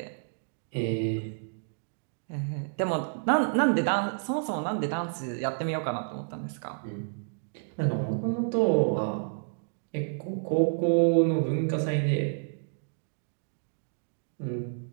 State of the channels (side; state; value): left; silent; digital silence